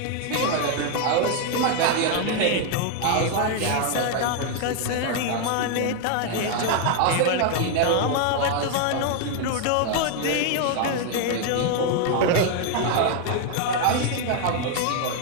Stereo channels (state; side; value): different; both; correlation 0.00